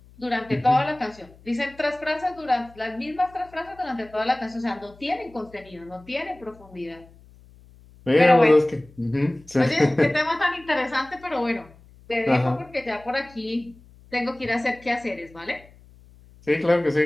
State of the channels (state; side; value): noise; left; hum, 25 dB below the sound